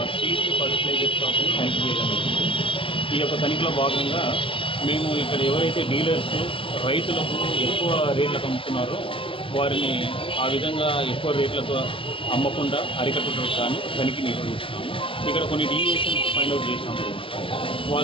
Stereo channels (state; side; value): late; right; 0.26 ms